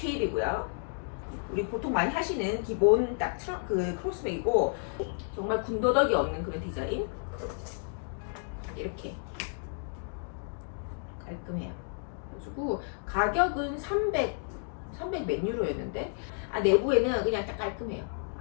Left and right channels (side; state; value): right; silent; 57 dB below the other